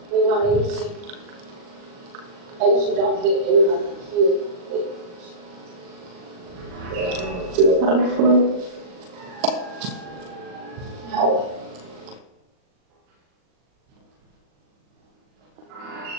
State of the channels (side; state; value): left; late; 39 ms